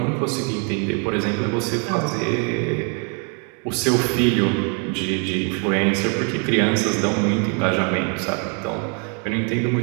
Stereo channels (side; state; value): left; quieter; 38.4 dB